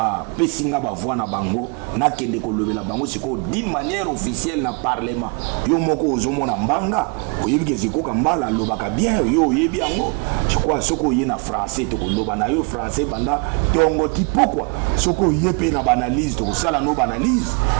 nga bavoi na bango nakende kolobela bango sikoyo d'une manière officielle na parlement, yo moko ozomona mbanga oyebi ke zikoka mbala alobaka bien yo oyebi yango. Je crois soko oye na français tokoloba na yo français banda tongo ti pokwa soko oye pe na banalise tokosala no banalise.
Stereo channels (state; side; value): quieter; left; 33.5 dB